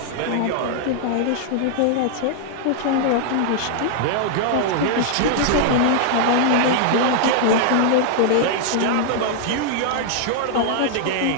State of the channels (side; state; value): both; different; correlation -0.01